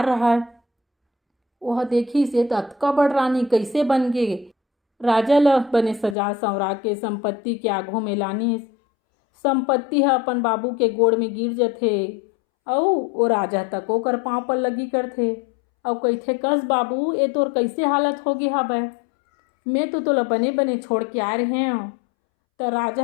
रहा। वह देखी से अतका बड़ रानी कैसे बन गे। राजा ल बने सजा संवरा के संपत्ति के आघू में लानिस। संपत्ति है अपन बाबू के गोड़ में गिर जाथे और वो राजा तक ओकर पाँव पर लगी करथे और कहथे कस बाबू ये तोर कैसे हालत हो गया हबै, मैं तो तोला बने बने छोड़ के आए रहे हूँ। तो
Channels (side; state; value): right; drops out; at 6.2 s